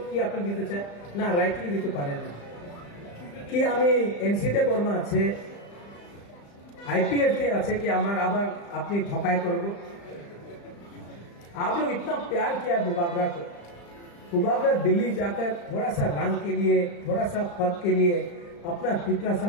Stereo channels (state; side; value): late; right; 35 ms